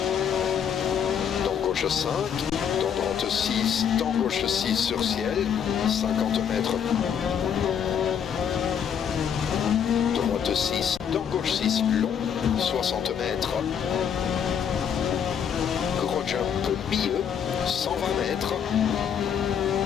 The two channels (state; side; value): quieter; right; 8.0 dB